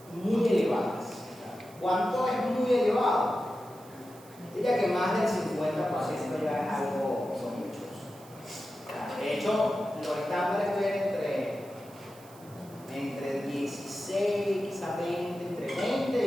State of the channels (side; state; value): right; noise; hiss, 24 dB below the sound